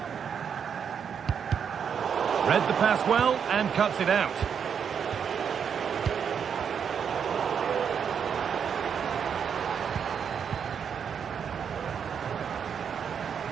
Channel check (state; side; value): quieter; left; 7.3 dB